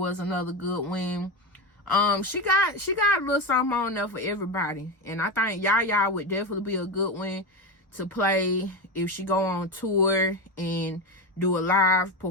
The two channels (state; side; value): normal; both; correlation 0.17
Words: another good one. She got a little something on there for everybody, and I think Yaya would definitely be a good one to play if she go on tour and do a live